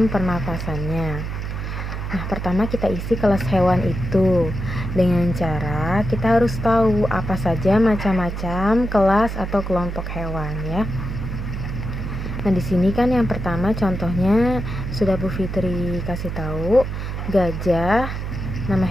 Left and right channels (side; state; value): right; noise; hum, 5 dB below the sound